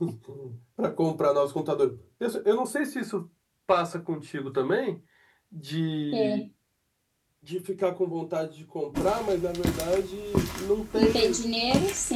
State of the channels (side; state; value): both; identical; correlation 1.00